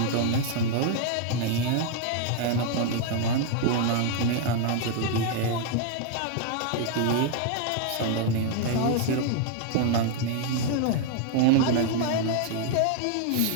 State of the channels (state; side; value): different; both; correlation 0.00